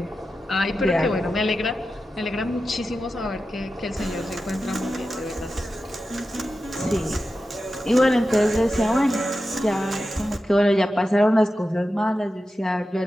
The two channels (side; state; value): both; normal; correlation 0.92